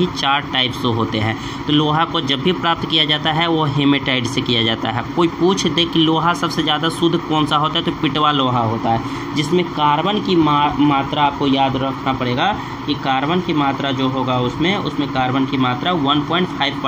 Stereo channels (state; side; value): identical; both; correlation 1.00